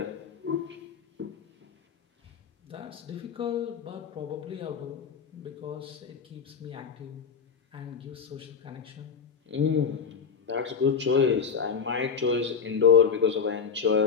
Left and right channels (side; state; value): right; quieter; 6.3 dB